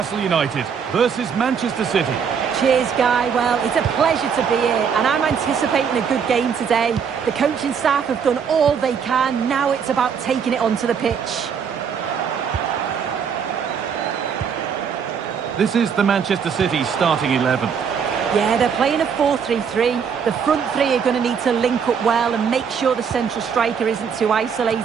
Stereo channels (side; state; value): left; quieter; 6.9 dB